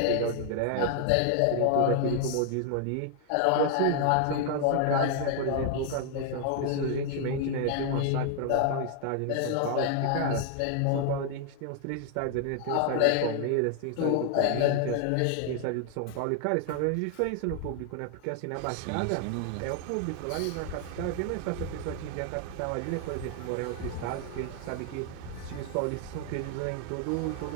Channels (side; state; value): both; different; correlation 0.00